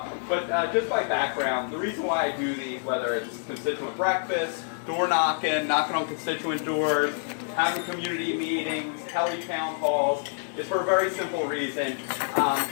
But just by background, the reason why I do these, whether it's constituent breakfast, door knocking, knocking on constituent doors, having community meetings, tele-town halls, is for a very simple reason.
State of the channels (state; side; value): silent; right; digital silence